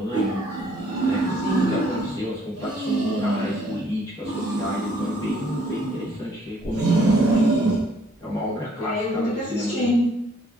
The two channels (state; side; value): normal; both; correlation 0.63